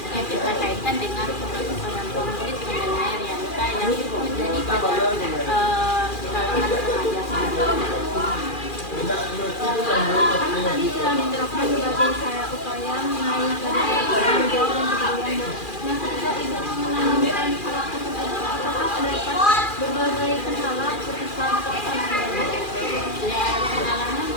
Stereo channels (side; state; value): right; late; 2.4 ms